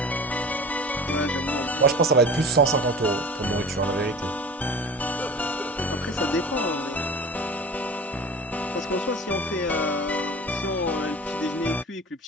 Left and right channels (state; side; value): normal; both; correlation 0.37